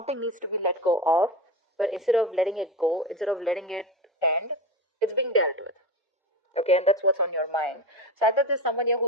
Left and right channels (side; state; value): both; normal; correlation 0.23